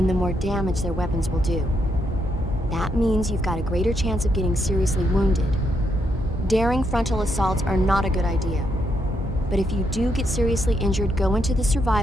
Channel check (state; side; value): normal; both; correlation 0.78